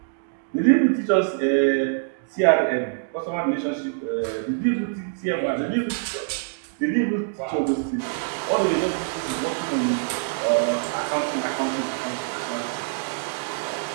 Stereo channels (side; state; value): left; silent; digital silence